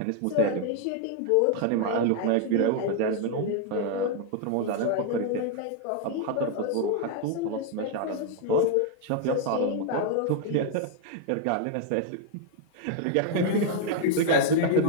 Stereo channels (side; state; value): both; different; correlation 0.00